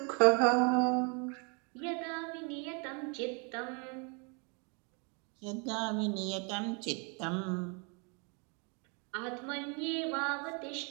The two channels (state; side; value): quieter; left; 34.5 dB